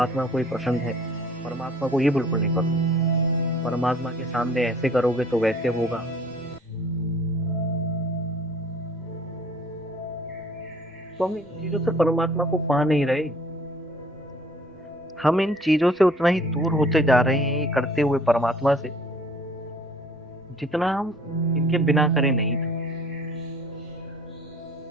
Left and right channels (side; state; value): both; normal; correlation 0.53